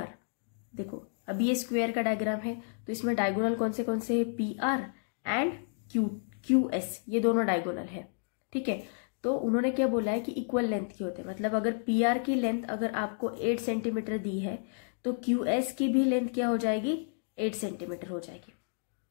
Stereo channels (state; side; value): silent; right; digital silence